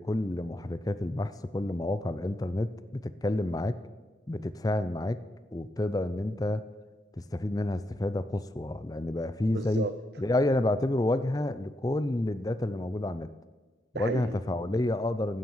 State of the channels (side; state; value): both; normal; correlation 0.82